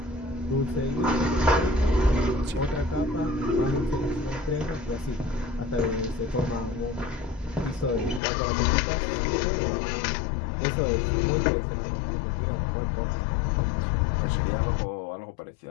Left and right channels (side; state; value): right; drops out; at 8.2 s